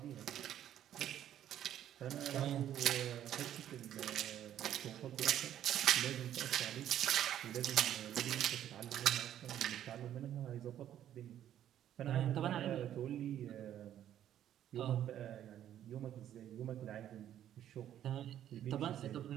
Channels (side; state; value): left; quieter; 11.1 dB